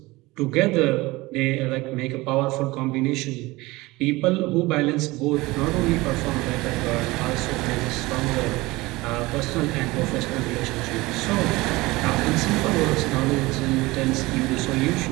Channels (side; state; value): left; quieter; 21.1 dB